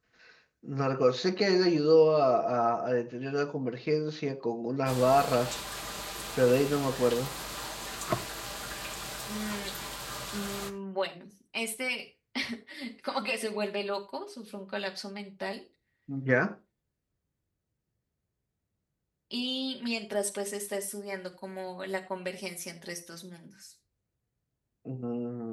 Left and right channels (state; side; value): identical; both; correlation 1.00